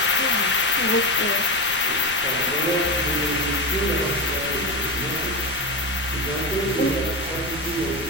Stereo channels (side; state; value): left; noise; rumble, 17 dB below the sound